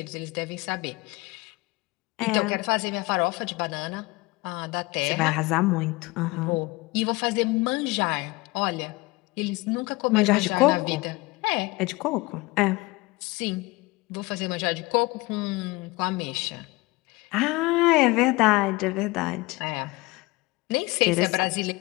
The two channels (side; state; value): right; quieter; 23.0 dB